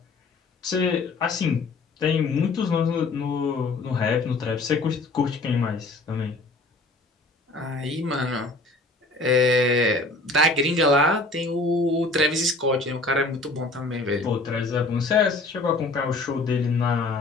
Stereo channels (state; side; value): quieter; right; 3.1 dB